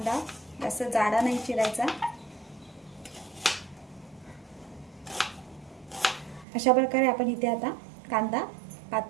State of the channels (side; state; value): left; drops out; at 6.5 s